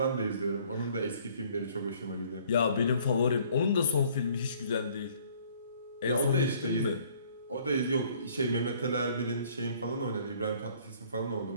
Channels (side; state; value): both; inverted; correlation -0.58